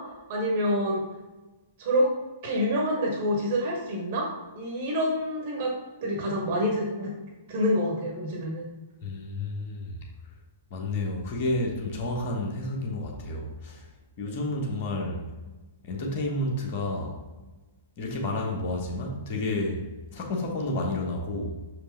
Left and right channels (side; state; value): both; inverted; correlation -0.35